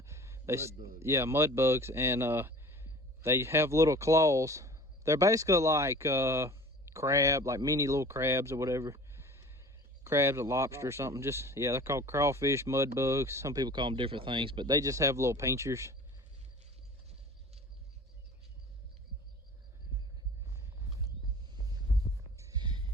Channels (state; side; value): normal; both; correlation 0.42